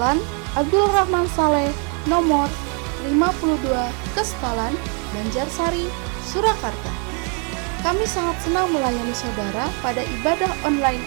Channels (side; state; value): left; quieter; 37.6 dB